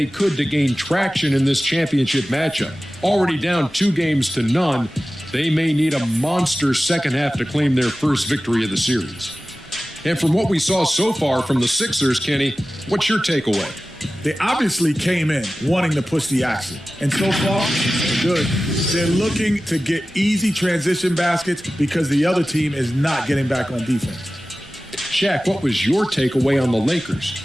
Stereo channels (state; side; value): normal; both; correlation 0.95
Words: could to gain traction in this championship matchup. Already down 2-0, they may need a monster second half to claim their first victory of the series. And from what we saw so far from the Sixers, Kenny, what's your takeaway? They obviously came in wanting to push the action. And so far, they're good. They're looking to get easy transition baskets because the other team is not getting back on defense. Shaq, what was your takeaway on the Lakers?